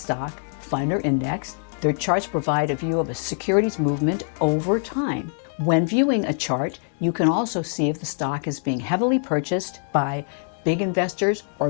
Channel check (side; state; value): right; silent; 63 dB below the other